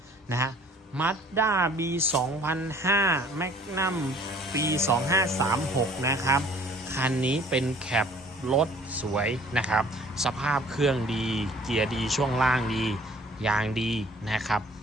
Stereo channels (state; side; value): normal; both; correlation 0.54